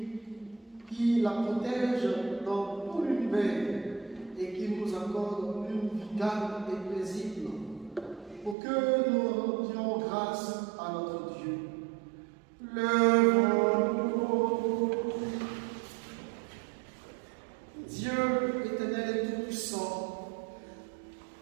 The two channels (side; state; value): left; drops out; at 8.6 s